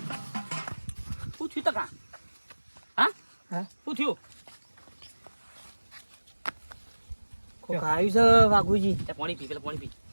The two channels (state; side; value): inverted; both; correlation -1.00